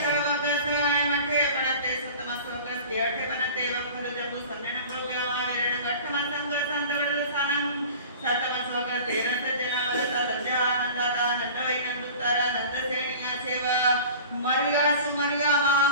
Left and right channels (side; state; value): both; inverted; correlation -0.40